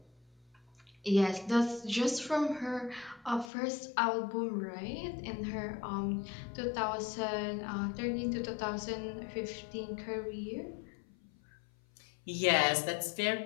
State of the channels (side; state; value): right; drops out; at 3.5 s